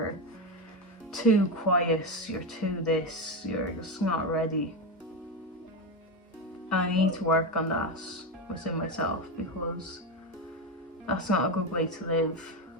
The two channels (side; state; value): both; normal; correlation 0.13